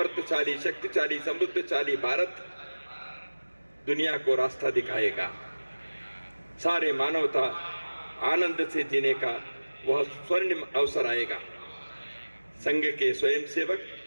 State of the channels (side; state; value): both; inverted; correlation -1.00